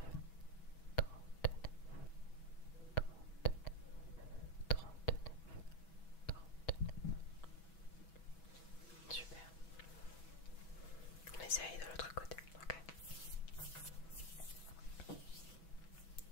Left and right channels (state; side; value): late; right; 6.1 ms